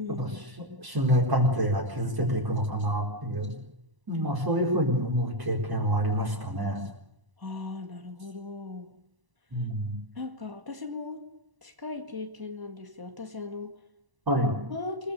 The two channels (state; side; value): late; left; 1.0 ms